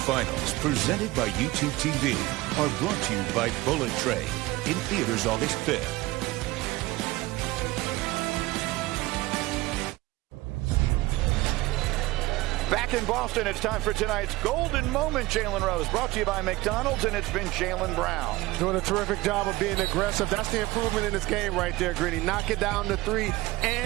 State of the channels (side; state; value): left; quieter; 19.5 dB